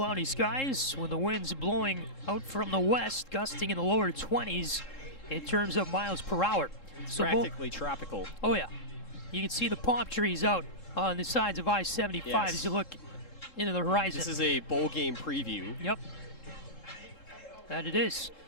skies with the winds blowing out from the west, gusting in the lower 20s in terms of miles per hour. So practically tropical. Oh, yeah. You can see the palm trees out on the sides of I-75 as you look into the horizon. This is a bowl game preview. Yep. That it is.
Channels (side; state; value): right; late; 3.7 ms